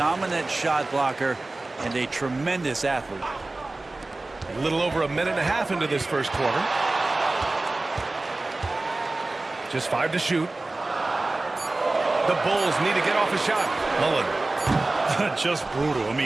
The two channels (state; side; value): quieter; left; 3.0 dB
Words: shot blocker and a tremendous athlete. A little over a minute and a half into this first quarter. Just 5 to shoot. The Bulls need to get off a shot. Mullen. Just brutal. I